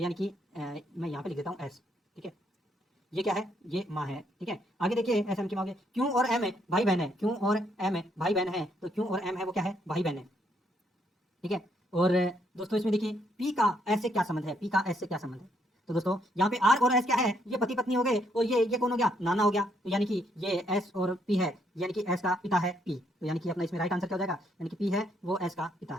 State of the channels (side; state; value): both; normal; correlation 0.72